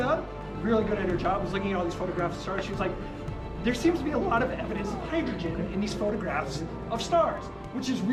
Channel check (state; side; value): identical; both; correlation 1.00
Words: really good at her job, was looking at all these photographs of stars. She was like, there seems to be a lot of evidence of hydrogen in these photographs of stars, which is